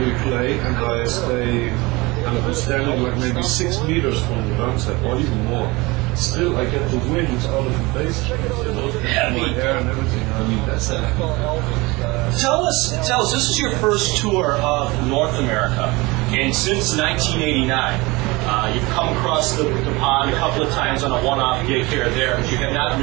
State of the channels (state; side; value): quieter; left; 23.4 dB